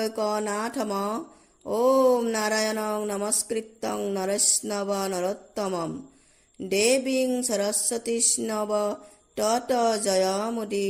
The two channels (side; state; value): both; identical; correlation 1.00